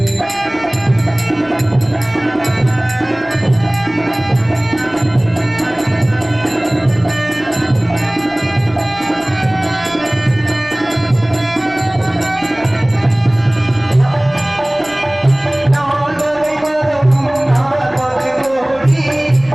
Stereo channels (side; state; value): left; noise; rumble, 26 dB below the sound